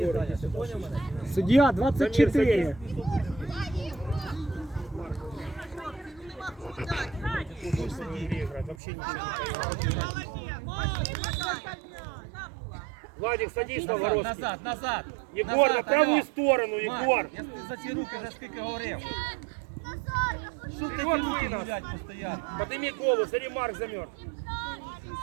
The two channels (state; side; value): drops out; left; at 8.8 s